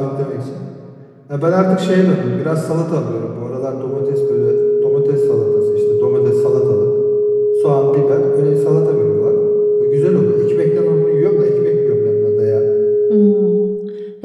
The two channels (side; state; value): both; identical; correlation 1.00